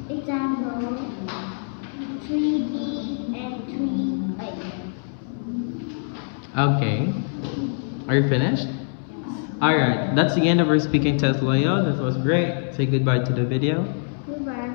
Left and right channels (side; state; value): right; silent; 63 dB below the other